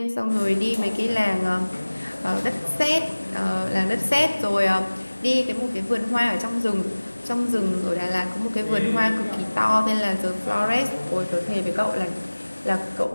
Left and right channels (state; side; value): inverted; both; correlation -1.00